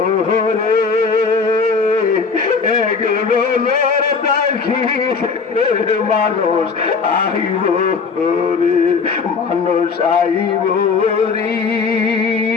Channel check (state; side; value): quieter; right; 5.1 dB